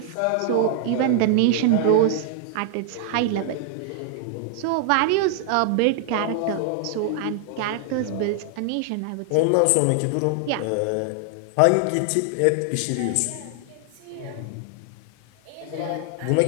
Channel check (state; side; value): different; both; correlation -0.01